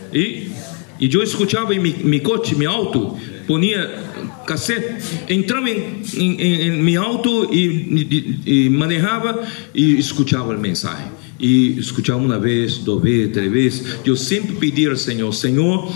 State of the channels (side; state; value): right; quieter; 36.2 dB